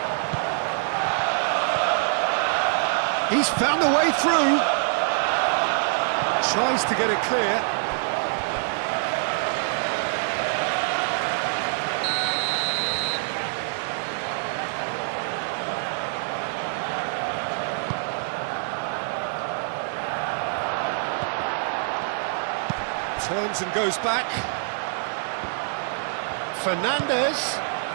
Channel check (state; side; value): silent; left; digital silence